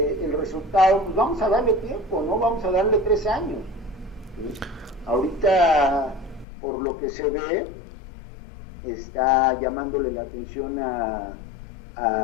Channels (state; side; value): drops out; right; at 6.5 s